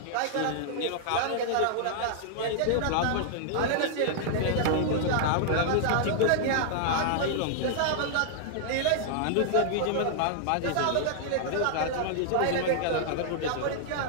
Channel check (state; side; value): different; both; correlation -0.01